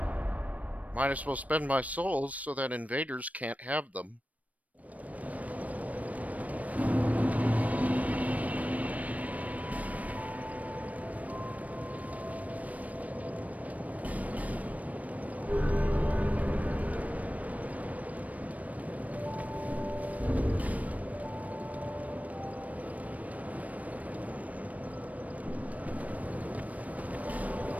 Might as well spend my souls so that invaders can't have them.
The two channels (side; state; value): left; late; 0.070 ms